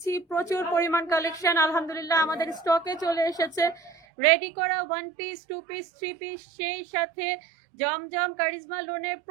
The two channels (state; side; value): drops out; left; at 4.0 s